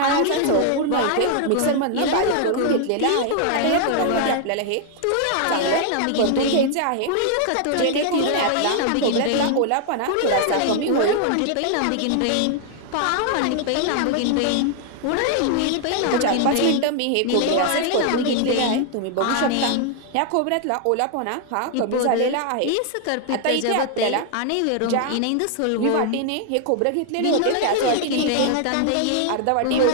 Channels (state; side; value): different; both; correlation 0.00